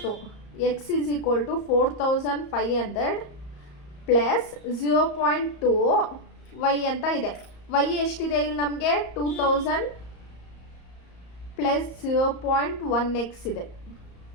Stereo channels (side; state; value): right; late; 34 ms